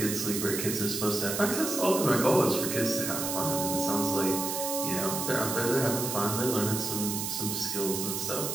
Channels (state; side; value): noise; right; hiss, 3 dB below the sound